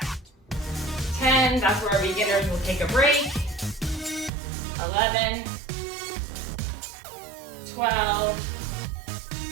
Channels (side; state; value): left; drops out; at 4.3 s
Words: 10, that's where our beginners will take a break. 11, 12,